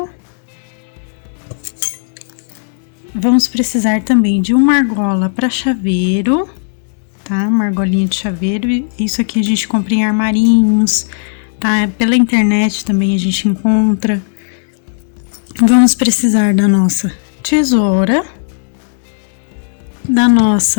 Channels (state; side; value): silent; right; digital silence